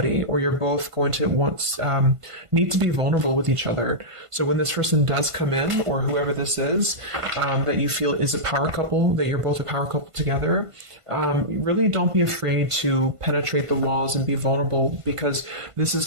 or you're both going to need to be vulnerable with each other. So when this person does come in, or whoever this is, that you feel is a power couple, that you're both a power couple together, really don't be afraid to penetrate the walls and be vulnerable, because this is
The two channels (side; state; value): left; late; 1.5 ms